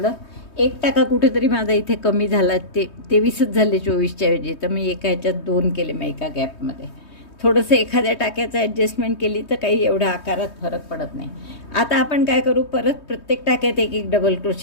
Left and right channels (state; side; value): late; right; 3.2 ms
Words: एक टाका कुठेतरी माझा इथे कमी झाला, 23च झाले 24च्या ऐवजी, तर मी एका ह्याच्यात 2 केले मग एका गॅपमध्ये. थोडंसं एखाद्या टाक्याचं ॲडजस्टमेंट केली तर काही एवढा आकारात फरक पडत नाही. आता आपण काय करू, परत प्रत्येक टाक्यात एक एक डबल